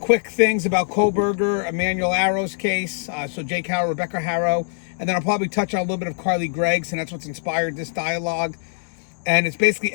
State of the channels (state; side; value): silent; right; digital silence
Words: things about Kohberger, Emmanuel Haro's case, so Jake Haro, Rebecca Haro, and then I'll probably touch on a little bit of Carly Gregg's, and that's what's inspired this dialogue. And it's basically